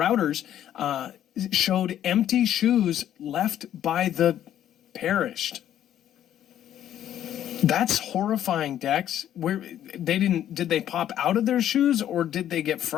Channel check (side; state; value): right; quieter; 11.1 dB